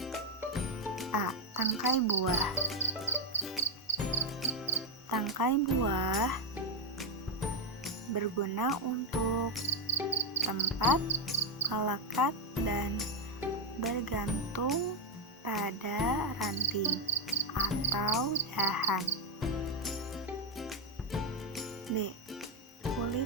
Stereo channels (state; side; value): normal; both; correlation 0.04